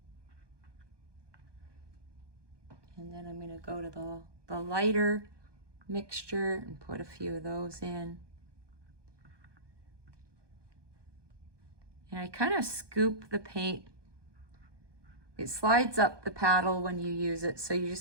then I'm going to go to the lighter mixture and put a few of those in. And I kind of scoop the paint. It slides up the paddle when you use it, so you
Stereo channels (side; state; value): left; late; 1.2 ms